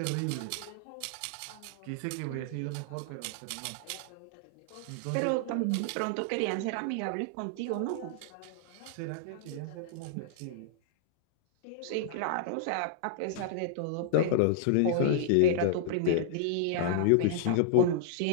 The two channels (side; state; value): both; different; correlation -0.01